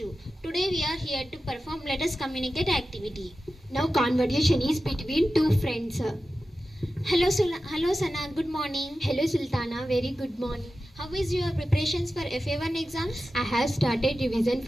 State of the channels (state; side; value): normal; both; correlation 0.93